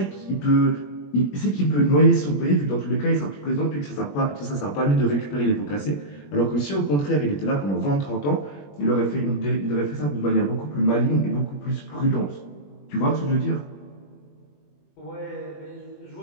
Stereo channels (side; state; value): right; late; 21 ms